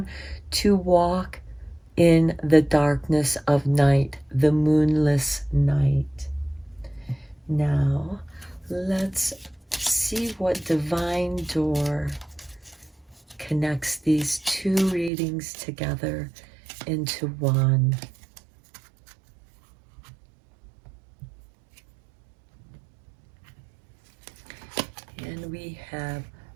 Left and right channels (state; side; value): drops out; left; at 15.1 s